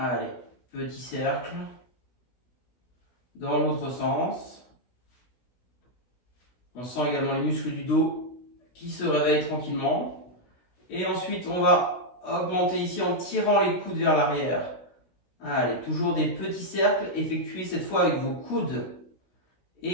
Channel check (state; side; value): late; right; 16 ms